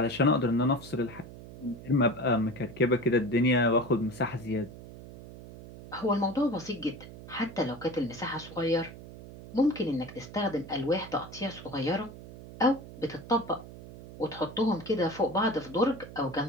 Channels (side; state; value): right; noise; hum, 15 dB below the sound